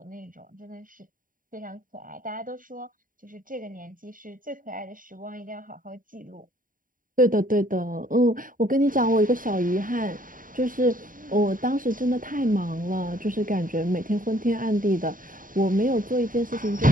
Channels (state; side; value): late; left; 0.40 ms